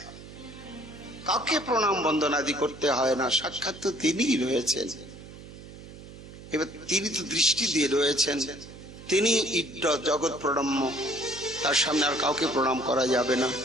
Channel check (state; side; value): noise; right; hum, 16 dB below the sound